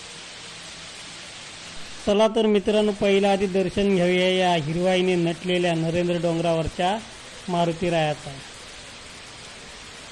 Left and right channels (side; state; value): both; identical; correlation 1.00